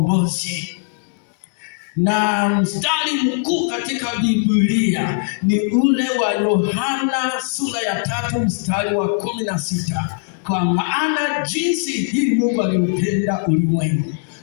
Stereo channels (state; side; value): silent; right; 66 dB below the other